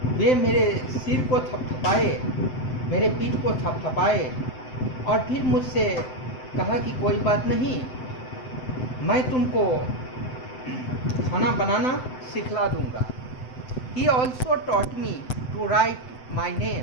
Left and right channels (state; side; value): late; right; 7.9 ms